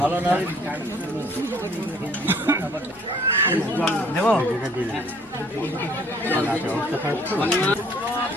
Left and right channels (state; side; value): noise; left; hum, 28 dB below the sound